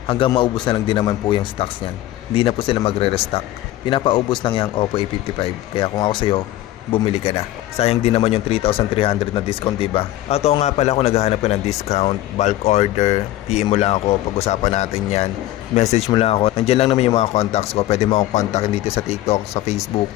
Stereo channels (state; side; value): quieter; right; 14.8 dB